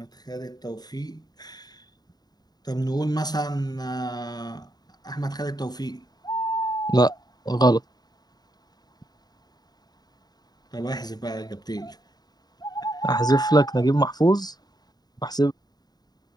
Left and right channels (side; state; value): right; late; 0.19 ms